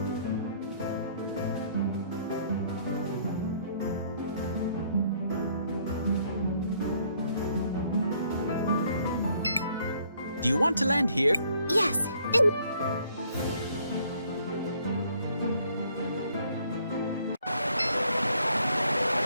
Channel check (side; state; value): both; inverted; correlation -0.64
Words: Do you want to land here? Yes.